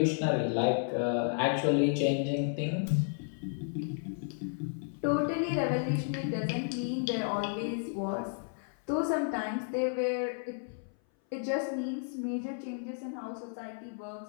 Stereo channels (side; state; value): right; silent; 56 dB below the other